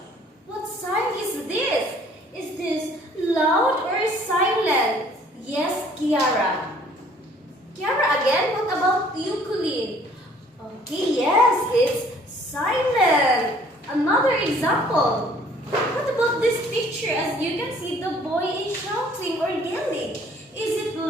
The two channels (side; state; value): both; normal; correlation 0.57